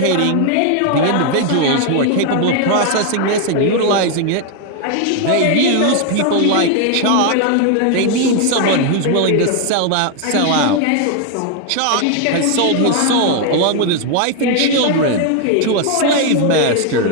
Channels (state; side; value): different; both; correlation 0.01